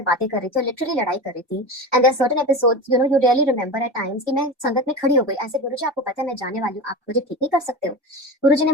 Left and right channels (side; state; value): both; normal; correlation 0.27